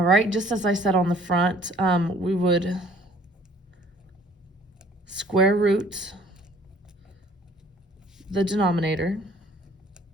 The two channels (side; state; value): both; normal; correlation 0.55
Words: right, just as I said on the front, we would square root the denominator,